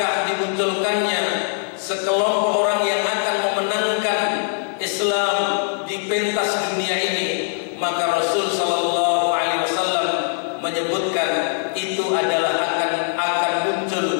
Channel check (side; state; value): right; silent; digital silence